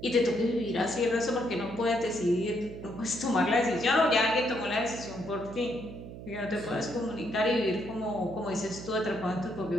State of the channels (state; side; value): noise; right; hum, 12 dB below the sound